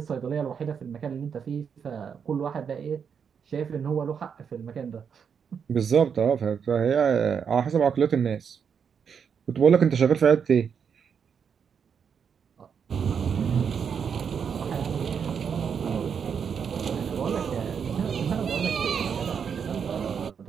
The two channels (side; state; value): left; quieter; 7.0 dB